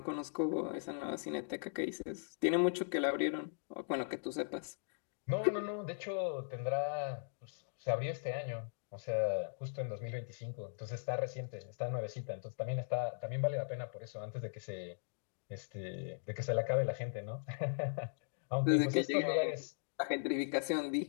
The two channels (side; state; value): right; silent; digital silence